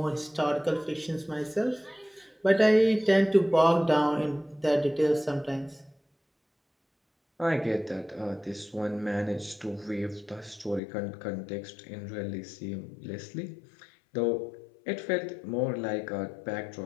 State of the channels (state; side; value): drops out; right; at 10.8 s